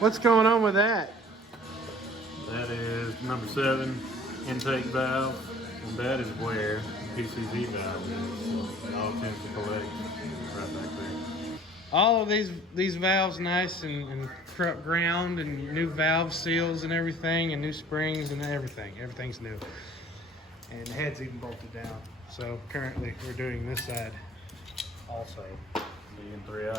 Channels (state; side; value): normal; both; correlation 0.50